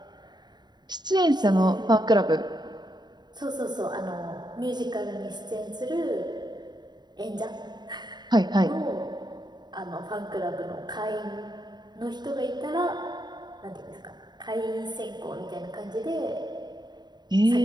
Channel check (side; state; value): left; late; 0.21 ms